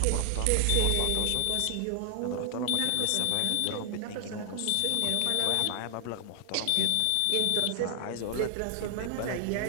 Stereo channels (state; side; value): different; both; correlation 0.00